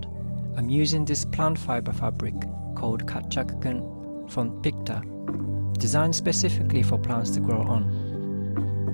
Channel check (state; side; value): inverted; both; correlation -1.00